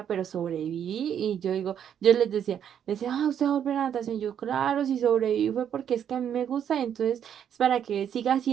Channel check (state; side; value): quieter; left; 9.0 dB